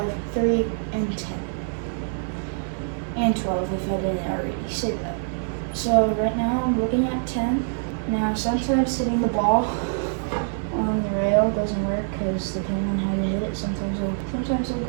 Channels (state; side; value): silent; left; digital silence